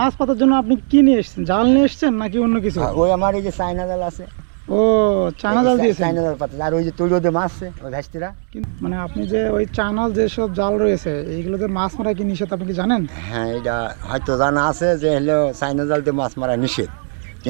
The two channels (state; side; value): silent; left; digital silence